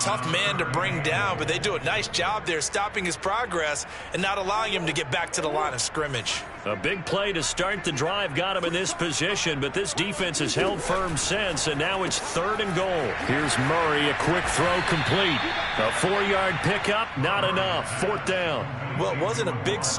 man to bring down, but they do a nice job there stopping his progress and not allowing him to get back to the line of scrimmage. A big play to start the drive got him in this position, but this defense has held firm since, and now it's 3rd and goal. Here's Murray, a quick throw complete. A 4-yard pickup, not enough. 4th down. Well, it wasn't a big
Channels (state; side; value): identical; both; correlation 1.00